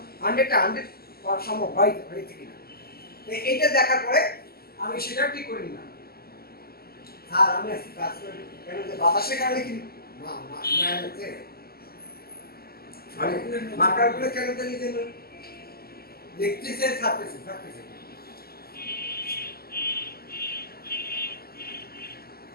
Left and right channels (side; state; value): right; late; 0.45 ms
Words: 100 করা সম্ভব হয়েছে কিনা। এইটা দেখার পরে আমি সেটা ঠিক করে নিলাম। আর আমি আজকে কাজ করে কেন যে বাতাসের কারণে কি মানে মাকারগুলো কেন জানি যে দেখতেছে, ছাড়তেছে।